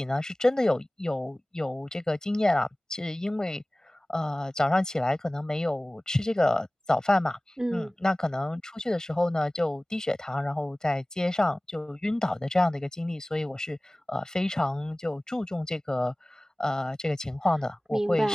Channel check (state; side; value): normal; both; correlation 0.98